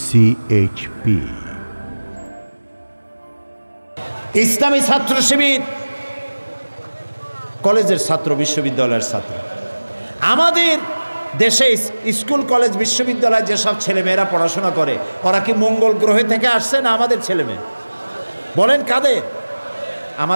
CHP ইসলামী ছাত্র শিবির কলেজের ছাত্র, বিশ্ববিদ্যালয়ের ছাত্র। আমাদের দেশে স্কুল কলেজ বিশ্ববিদ্যালয়ে যেসব ছেলেমেয়েরা পড়াশোনা করে ওরা কি মঙ্গল গ্রহে থেকে আসছে না আমাদের ছেলেমেয়ে? বলেন কাদের?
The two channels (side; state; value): both; inverted; correlation -1.00